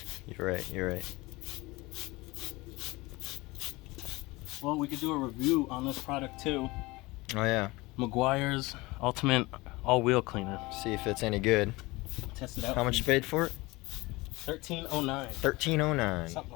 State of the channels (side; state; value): right; quieter; 22.2 dB